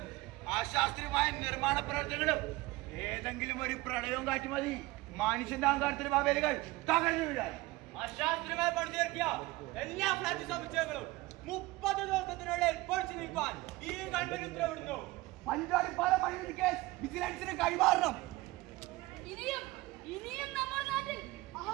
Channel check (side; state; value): left; quieter; 20.3 dB